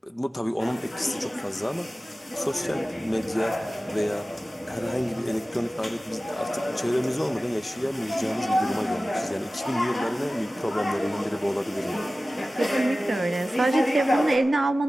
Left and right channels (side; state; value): both; normal; correlation 0.96